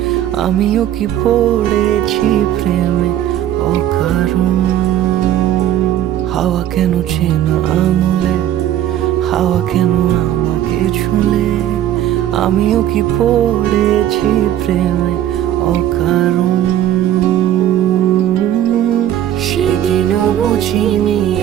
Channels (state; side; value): quieter; left; 11.7 dB